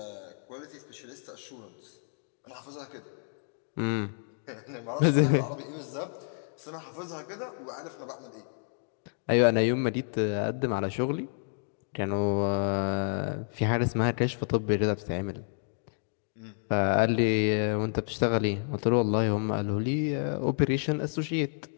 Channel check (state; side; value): silent; right; digital silence